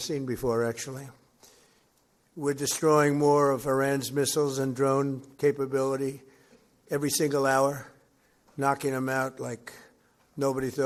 before, actually. We're destroying more of Iran's missiles and drone capability every single hour, knocking them out like nobody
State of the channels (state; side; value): identical; both; correlation 1.00